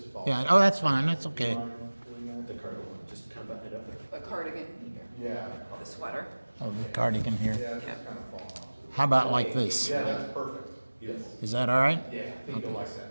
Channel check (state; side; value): inverted; both; correlation -1.00